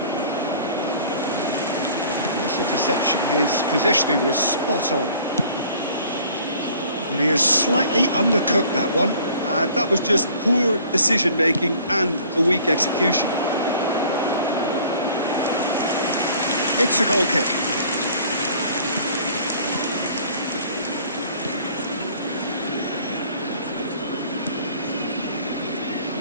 Nice interception. His positioning was spot on. But he has slightly undercooked that one. That was just poor decision-making and a weak execution. It's a goal kick.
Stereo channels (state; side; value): inverted; both; correlation -0.52